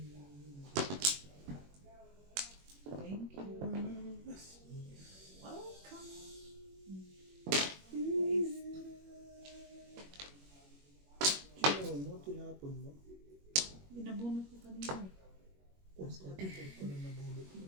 you. Welcome. Sino mo? Tinapon mo? Binabunot ko kanina eh. Porto na nabulot mo.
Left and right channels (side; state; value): left; late; 21 ms